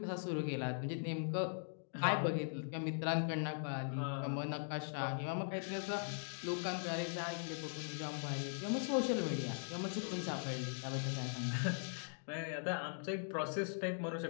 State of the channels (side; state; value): right; silent; digital silence